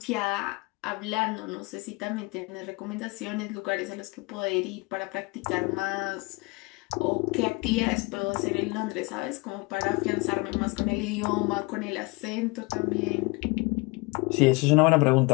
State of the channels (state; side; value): quieter; right; 26.5 dB